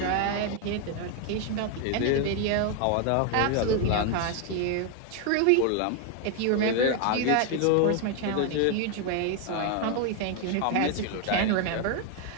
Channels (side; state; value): both; different; correlation 0.01